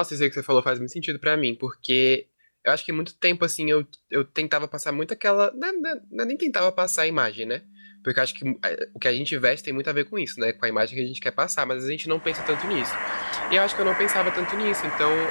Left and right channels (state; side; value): inverted; both; correlation -1.00